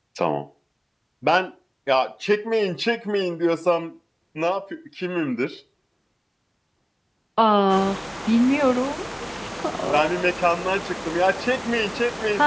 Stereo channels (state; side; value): identical; both; correlation 1.00